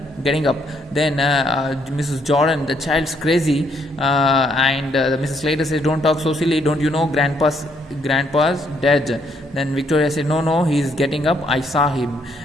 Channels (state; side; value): normal; both; correlation 0.70